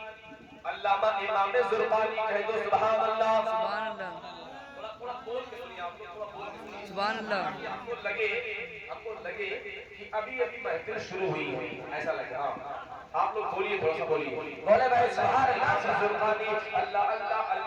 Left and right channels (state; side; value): identical; both; correlation 1.00